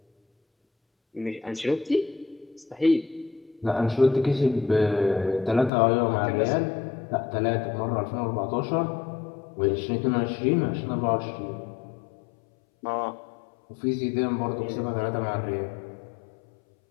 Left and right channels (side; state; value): right; drops out; at 5.7 s